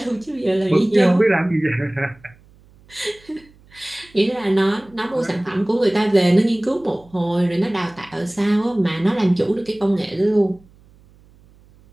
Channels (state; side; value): noise; right; hum, 28 dB below the sound